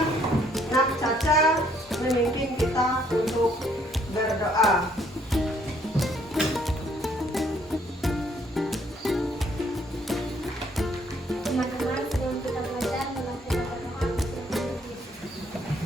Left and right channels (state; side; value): normal; both; correlation 0.65